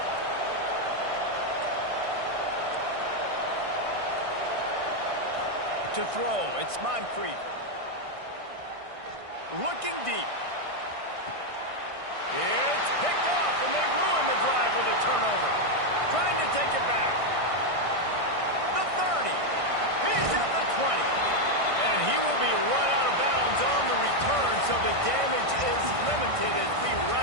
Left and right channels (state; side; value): late; left; 1.6 ms